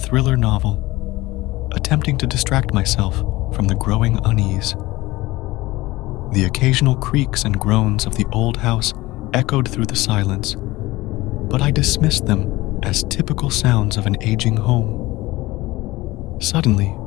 novel, attempting to distract myself from the growing unease. The occasional creaks and groans of the old house echoed through the silence, but I dismissed them as typical sounds of an aging home. Suddenly,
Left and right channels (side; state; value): right; quieter; 19.3 dB